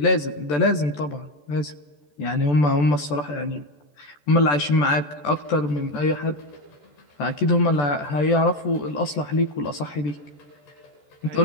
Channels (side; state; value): right; late; 14 ms